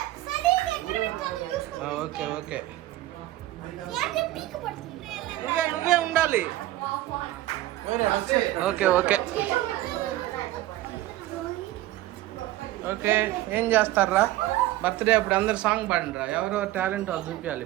ఓకే ఓకే. నువ్వే నువ్వే ఉండాలి. Okay okay okay. ఏం చేస్తారా బర్త్డే అప్పుడు? అందరు సాంగ్ పాడండిరా. ఎవరెవరు టాలెంట్ వాళ్ళు చూపించాలి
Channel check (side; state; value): left; quieter; 15.9 dB